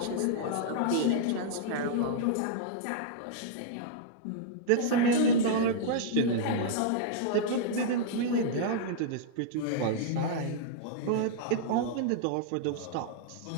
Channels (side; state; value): both; different; correlation -0.02